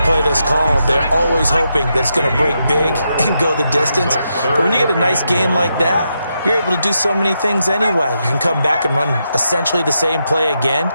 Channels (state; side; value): inverted; both; correlation -0.83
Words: play that's called, they're always hoping that it's going to break big and go the distance. But when you get a nice game like that, you're able to do so many things anyway. You can come back and run essentially the same play again,